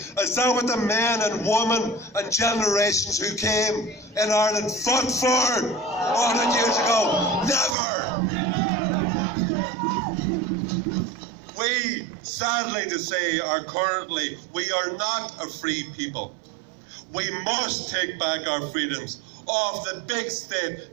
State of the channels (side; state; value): left; drops out; at 7.8 s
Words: that what the men and women and generations who came in Ireland fought for 100 years ago? Never! We, sadly to say, we are not a free people. We must take back our freedoms of the big